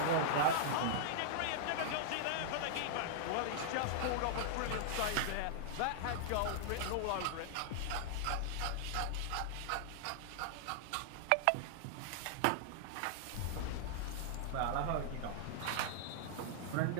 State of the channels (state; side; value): different; both; correlation -0.01